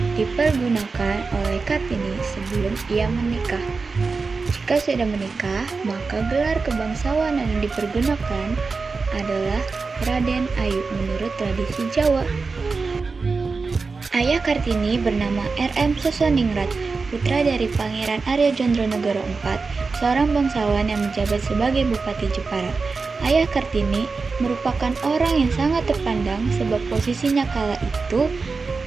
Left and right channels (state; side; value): quieter; left; 4.4 dB